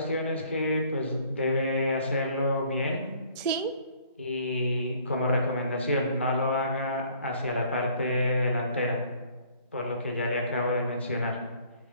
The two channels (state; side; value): inverted; both; correlation -0.58